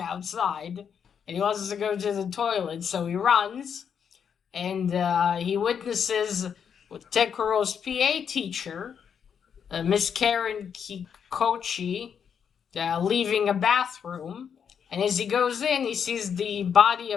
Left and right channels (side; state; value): right; quieter; 7.4 dB